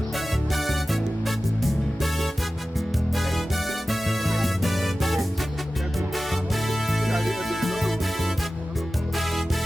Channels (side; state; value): both; normal; correlation 0.95